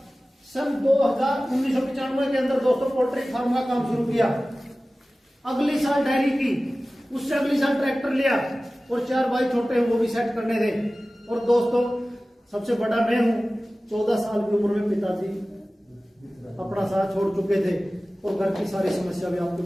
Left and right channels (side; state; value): both; normal; correlation 0.97